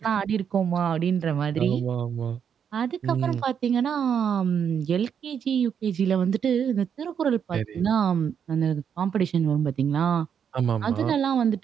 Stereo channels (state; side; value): quieter; left; 7.8 dB